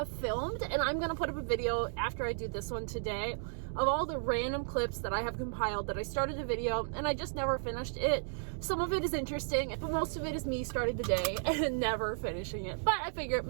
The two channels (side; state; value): left; silent; digital silence